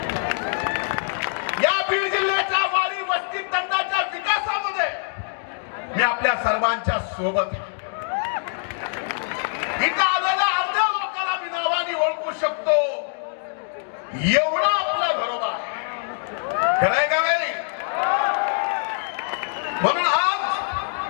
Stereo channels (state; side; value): silent; right; digital silence